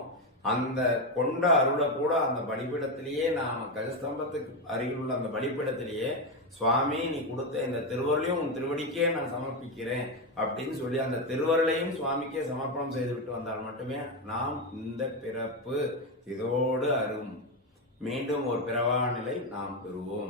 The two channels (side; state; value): both; normal; correlation 0.10